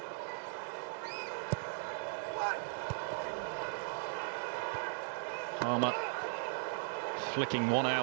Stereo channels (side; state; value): left; silent; 52 dB below the other